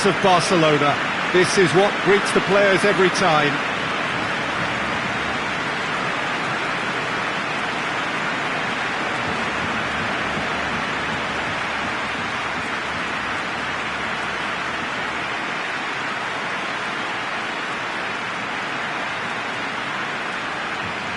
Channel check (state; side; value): identical; both; correlation 1.00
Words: of Barcelona. This is what greets the players every time.